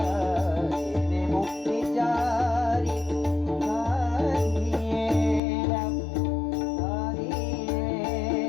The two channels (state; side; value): drops out; right; at 5.4 s